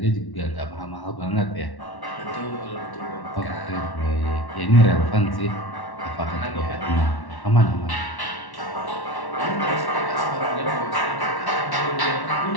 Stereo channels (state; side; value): late; right; 1.1 ms